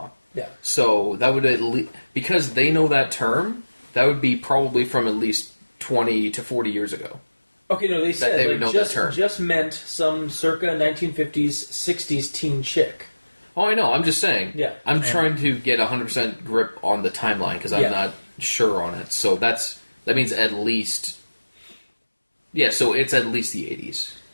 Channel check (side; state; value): both; inverted; correlation -1.00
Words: Yeah. So that would at least because they know that term. That would be probably from at least 20 to 40 years ago. Okay, no, they said they would know that term. just meant some circa 1950s 60s teen chick. Oh, I know. I'm just saying. Yeah. I'm trying to get 100% grip on the timeline because I'm not sure on it. So that means at least. Yeah, so it's at least the 80s.